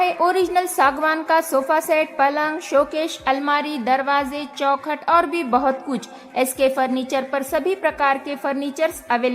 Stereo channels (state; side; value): identical; both; correlation 1.00